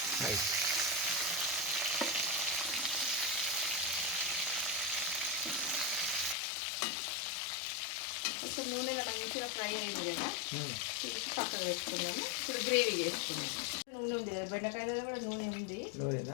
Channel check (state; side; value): drops out; right; at 6.4 s